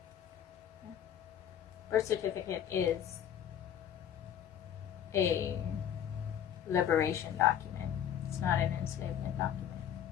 Birth certificate is a liberation document. It's not an enslavement document.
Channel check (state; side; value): quieter; right; 9.8 dB